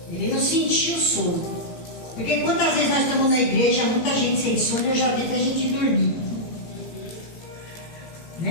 ele não sentiu sono. Porque quantas vezes nós estamos na igreja, muita gente sem sono, eu já vi até gente dormir.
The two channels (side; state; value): right; late; 17 ms